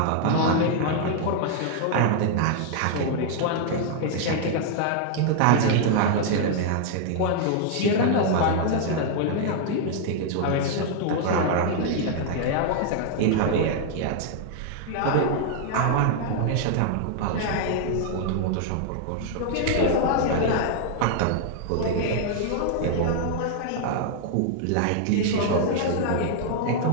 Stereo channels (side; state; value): both; different; correlation -0.01